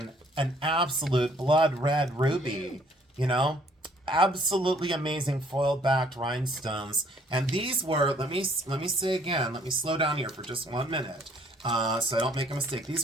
an absolute blood red ruby, you know? Absolutely amazing foil-backed rhinestones. And these were, let me say again, let me slow down here for just 1 minute so I don't make a mistake. These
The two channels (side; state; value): both; normal; correlation 0.62